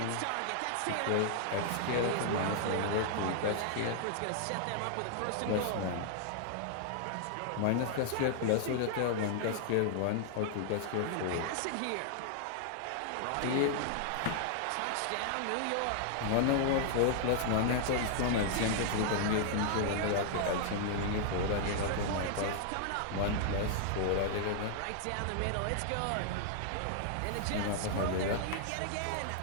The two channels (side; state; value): both; different; correlation -0.01